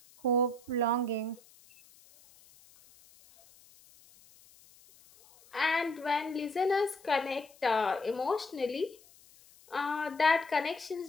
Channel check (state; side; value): noise; left; hiss, 26 dB below the sound